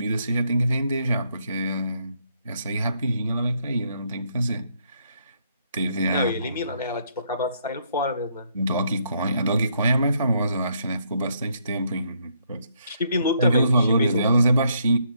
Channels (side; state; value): both; inverted; correlation -0.72